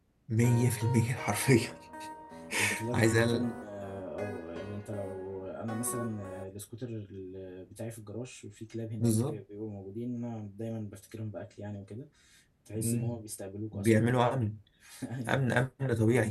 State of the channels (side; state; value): both; identical; correlation 1.00